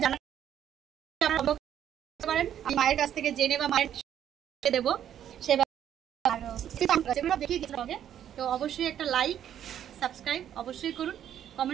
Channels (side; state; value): left; quieter; 10.2 dB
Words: জানার পারেন, আমি মায়ের কাছ থেকে জেনে বা মায়ের দেবো সেগুলো দেখিয়ে দিতে। তো অবশ্যই একটা লাইক সাবস্ক্রাইব অবশ্যই করুন,